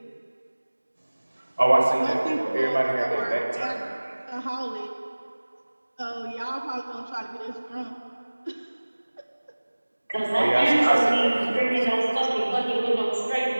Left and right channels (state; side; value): inverted; both; correlation -1.00